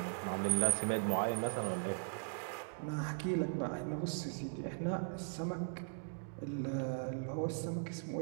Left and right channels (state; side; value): silent; left; digital silence